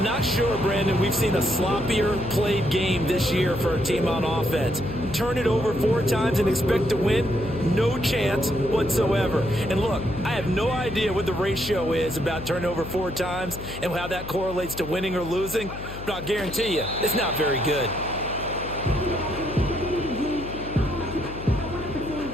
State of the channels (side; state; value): left; noise; hum, 11 dB below the sound